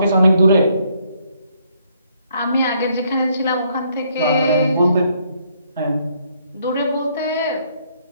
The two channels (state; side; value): inverted; both; correlation -0.69